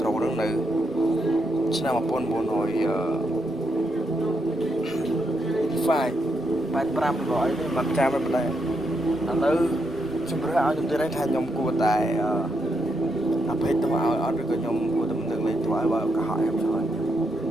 ហ្នឹងនៅឆ្នាំ 1985 ឬអីនេះមិនចាំមិនដែរឥឡូវជំរឿឲ្យខ្ញុំទៀតថាខ្ញុំគួរតែអភ័យទោសឲ្យអត់ឬក៏ខ្ញុំគួរតែមិនទឹកលេងទោសឲ្យបើកុហកខ្ញុំឆ្លើយ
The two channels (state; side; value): normal; both; correlation 0.80